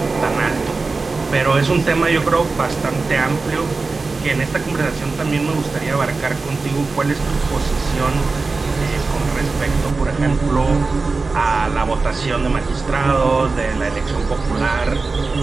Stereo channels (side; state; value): left; quieter; 3.9 dB